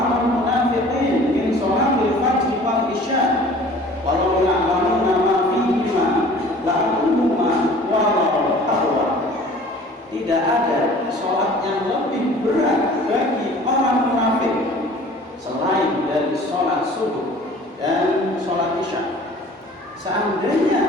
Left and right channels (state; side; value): normal; both; correlation 0.48